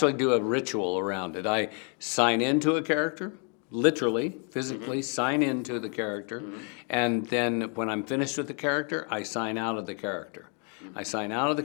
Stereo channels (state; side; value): quieter; right; 38.4 dB